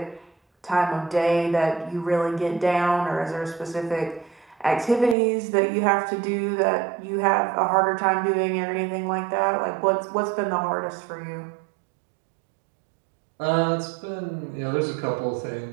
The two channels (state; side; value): drops out; left; at 5.2 s